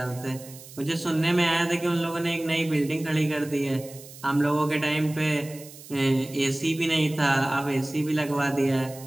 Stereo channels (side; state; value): right; noise; hiss, 18 dB below the sound